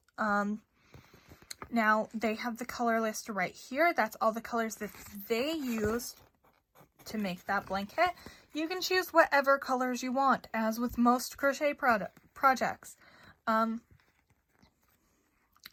Now they have the color list right here. That's all the colors that they used to make that blanket. You can choose whatever colors you want, as with most crochet projects.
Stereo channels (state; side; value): identical; both; correlation 1.00